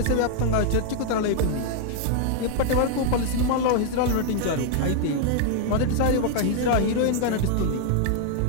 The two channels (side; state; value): both; different; correlation 0.00